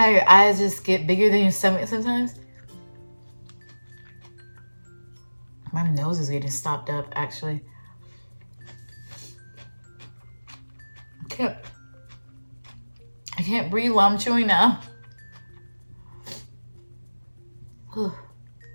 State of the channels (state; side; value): inverted; both; correlation -1.00